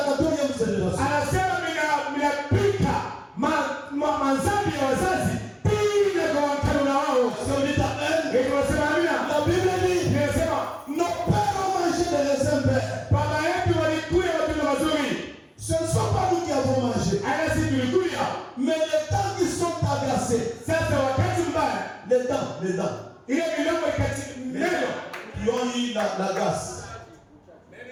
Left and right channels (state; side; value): identical; both; correlation 1.00